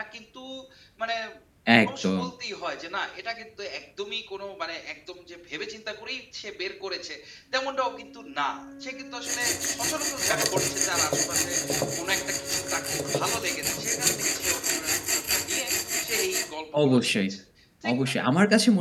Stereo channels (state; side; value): identical; both; correlation 1.00